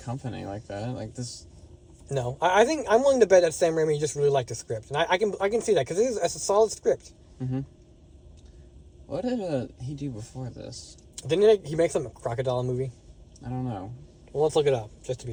like that. Like this. No, I think I'm willing to bet that Sam Raimi just really liked the script, and I can see that because it's a solid script. Mm-hmm. What did he do before this? Didn't he make some crocodile movie? I don't know. Well, let's look it up just to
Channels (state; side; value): identical; both; correlation 1.00